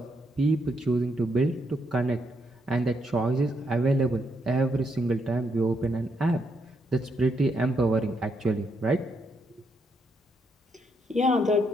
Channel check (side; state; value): both; normal; correlation 0.77